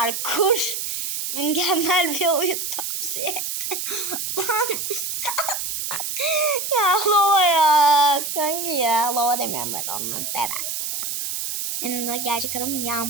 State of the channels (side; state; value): right; noise; hiss, 3 dB below the sound